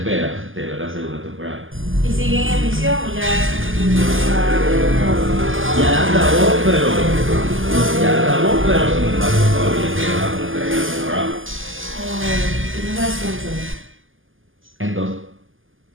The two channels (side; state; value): left; late; 0.58 ms